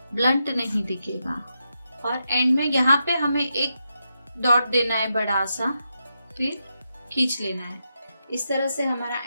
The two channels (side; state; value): both; inverted; correlation -0.85